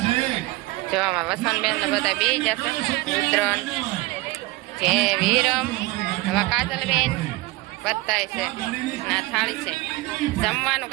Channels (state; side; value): quieter; left; 20.8 dB